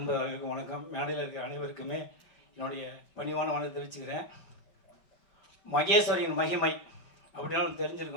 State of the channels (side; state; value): right; late; 5.1 ms